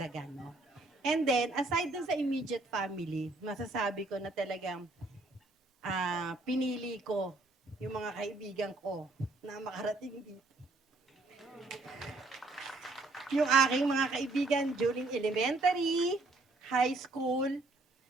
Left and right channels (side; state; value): left; quieter; 3.2 dB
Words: no? And then, aside dun sa immediate family, masasabi ko na talagang pinili ko yung mga kaibigan ko na makarating dito. Yung aking mga kaibigan during elementary, high school,